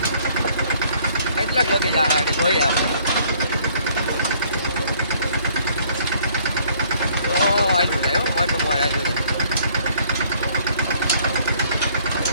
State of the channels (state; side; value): inverted; both; correlation -0.61